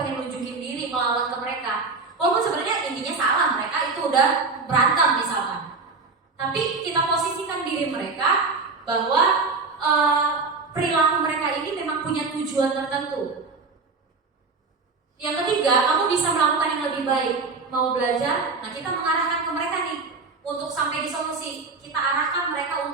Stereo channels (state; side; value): quieter; left; 4.1 dB